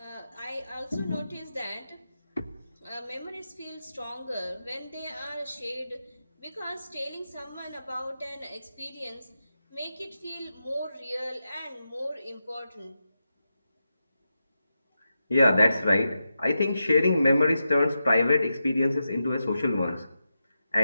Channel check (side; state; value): both; inverted; correlation -0.89